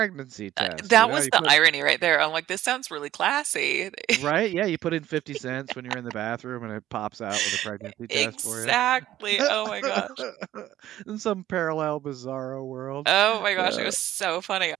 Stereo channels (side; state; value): left; quieter; 13.3 dB